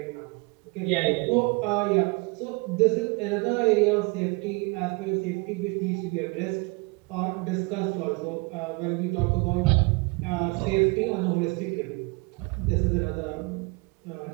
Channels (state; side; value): quieter; left; 28.4 dB